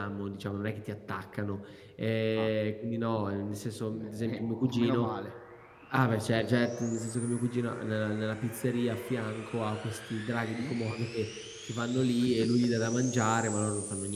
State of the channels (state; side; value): identical; both; correlation 1.00